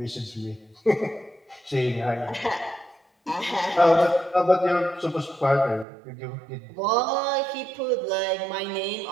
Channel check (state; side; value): drops out; left; at 5.9 s